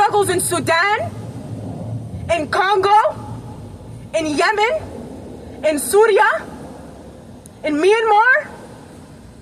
in Sudan, in Congo, in Yemen, in Syria, in Myanmar,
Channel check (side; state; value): both; identical; correlation 1.00